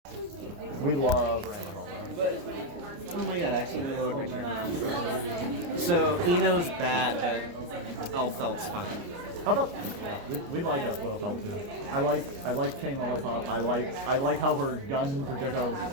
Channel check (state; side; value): late; left; 29 ms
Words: We love Ramahomo. But, oh my god, I accidentally lowered my chair now. So, Eno's bad, but Elfelt's fine. How about we like Elfelt too. I like Chain Lollipop. I like how her gun projectiles